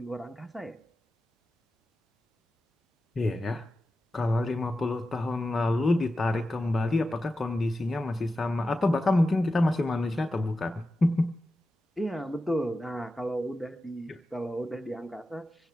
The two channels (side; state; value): both; normal; correlation 0.93